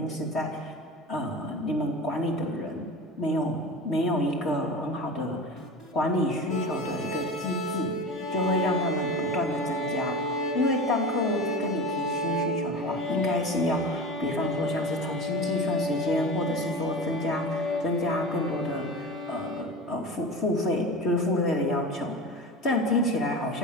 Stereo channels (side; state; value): both; normal; correlation 0.31